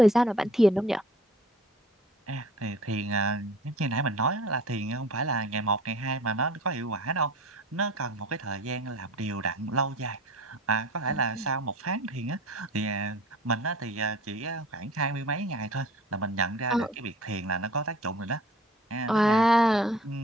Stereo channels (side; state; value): both; normal; correlation 0.46